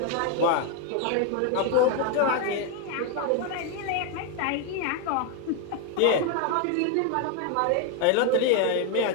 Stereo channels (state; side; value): different; both; correlation 0.01